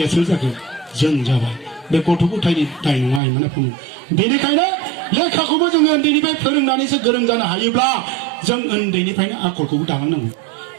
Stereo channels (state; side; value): drops out; left; at 3.2 s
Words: सोर जाखो जों जाबाय बे गथ' गथायनि दाय नङा आइमोन आफामोन बेनिखायनो लेखाखौबो जोङो उन्दैनिफ्राय फोरोंनानैसो गोरों जानो हायोब्ला जों उन्दैनिफ्रायनो आखलखौबो दालांनांगौ